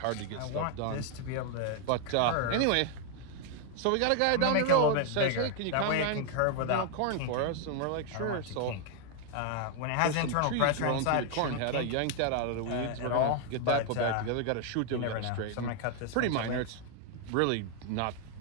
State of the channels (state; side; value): different; both; correlation 0.00